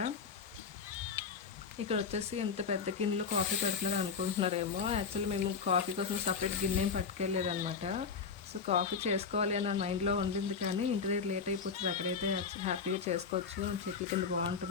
ఇక్కడ వచ్చేసి ఎంత పెద్ద గిన్నెలో కాఫీ పెడుతున్నారు అనుకుంటున్నారేమో. యాక్చువల్లీ మేము కాఫీ కోసం సపరేట్ గిన్నె ఏం పట్టుకెళ్ళలేదన్నమాట. సో కాఫీ చేసుకోవాలి అన్న మైండ్లో ఉండింది, కానీ ఇంటి దగ్గర లేట్ అయిపోతుంది, అక్కడైతే హ్యాపీగా చేసుకోవచ్చు, చెట్ల కింద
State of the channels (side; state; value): right; quieter; 5.7 dB